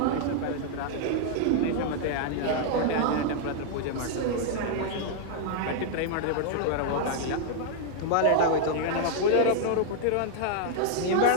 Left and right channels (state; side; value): different; both; correlation -0.01